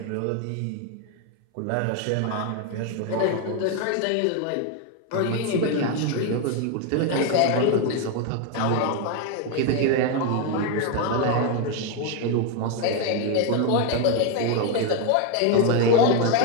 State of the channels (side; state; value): both; different; correlation 0.01